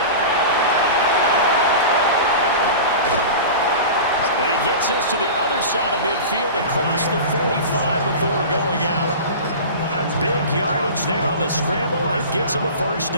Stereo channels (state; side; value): inverted; both; correlation -0.32